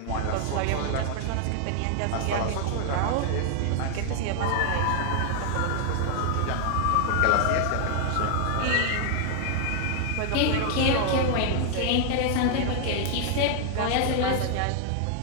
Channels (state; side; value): different; both; correlation 0.00